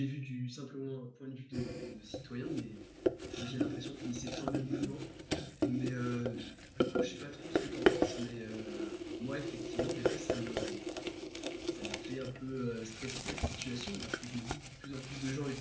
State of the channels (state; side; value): identical; both; correlation 1.00